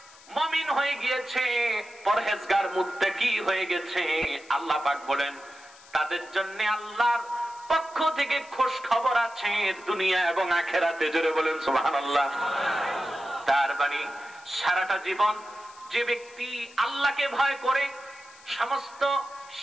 মুমিন হয়ে গিয়েছে, পরহেজগার মুত্তাকি হয়ে গেছে, আল্লাহ পাক বলেন তাদের জন্য আল্লাহর পক্ষ থেকে খোঁজ খবর আছে দুনিয়া এবং আখিরাতে। জোরে বলেন সুবহানাল্লাহ। তার মানে সারাটা জীবন যে ব্যক্তি আল্লাহকে ভয় করে সমস্ত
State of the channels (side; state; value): left; noise; hiss, 23 dB below the sound